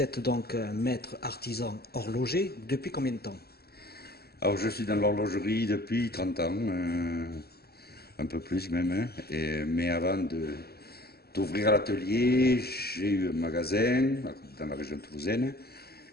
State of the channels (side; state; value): right; late; 0.46 ms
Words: donc un maître artisan horloger depuis combien de temps? Alors, je suis dans l'horlogerie depuis 30 ans, un peu plus même, hein, mais avant d'ouvrir l'atelier, j'ai eu un magasin dans la région toulousaine,